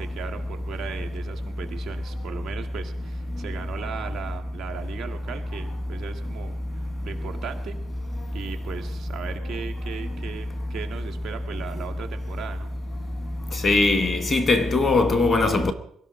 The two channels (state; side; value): normal; both; correlation 0.82